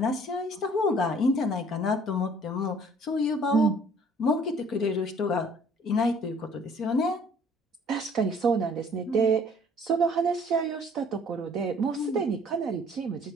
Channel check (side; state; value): both; normal; correlation 0.55